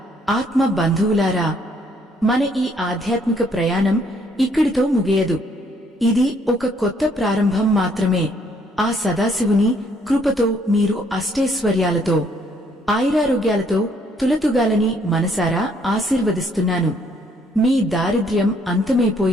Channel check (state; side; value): normal; both; correlation 0.67